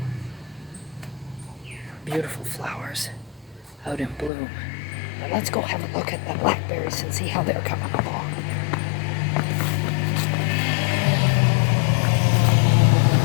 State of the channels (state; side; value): drops out; right; at 4.3 s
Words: Beautiful flowers out in bloom. But let's go have a look at the blackberries and see how they're coming along.